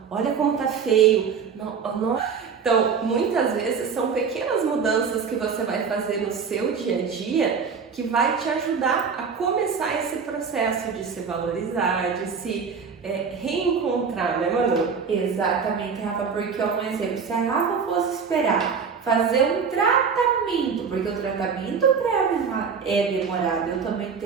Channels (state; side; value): quieter; left; 6.0 dB